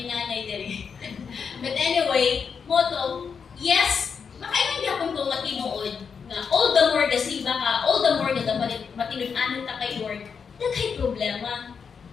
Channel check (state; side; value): quieter; right; 6.2 dB